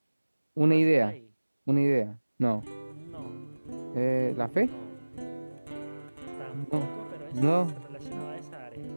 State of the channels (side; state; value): both; inverted; correlation -1.00